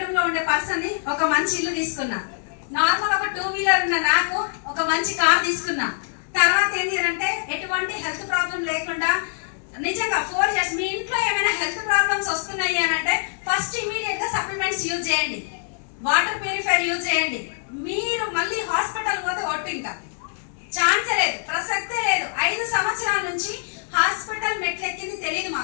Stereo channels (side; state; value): right; silent; digital silence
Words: లో ఉండే పర్సన్ ని ఒక మంచి ఇల్లు తీసుకున్నా. నార్మల్ ఒక 2 వీలర్ ఉన్న నాకు ఒక మంచి కార్ తీసుకున్నా. తర్వాత ఏంటి అంటే ఎటువంటి హెల్త్ ప్రాబ్లం లేకుండా నిజంగా 4 ఇయర్స్ మీ ఇంట్లో ఏమైనా హెల్త్ ప్రాబ్లమ్స్ వస్తున్నాయి అని అంటే ఫస్ట్ ఇమీడియట్ గా సప్లిమెంట్స్ యూజ్ చేయండి, వాటర్ ప్యూరిఫైర్ యూజ్ చేయండి. మీరు మళ్ళీ హాస్పిటల్ పోతే ఒట్టు ఇంకా ఛాన్సే లేదు, ప్రసక్తే లేదు. 5 సంవత్సరాల నుంచి హాస్పిటల్ మెట్లెక్కింది తెలియదు